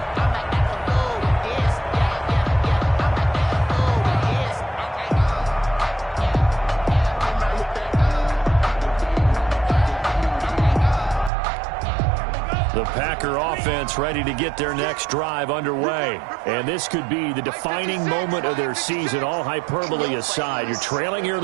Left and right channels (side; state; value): left; drops out; at 11.3 s